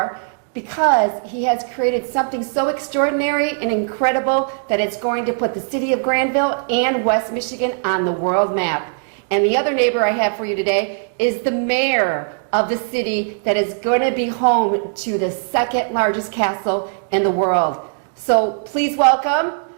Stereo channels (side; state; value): left; silent; digital silence